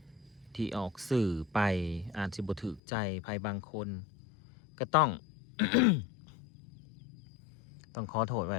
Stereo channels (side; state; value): right; drops out; at 2.8 s